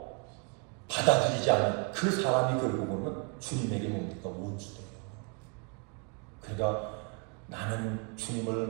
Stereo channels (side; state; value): left; quieter; 35.9 dB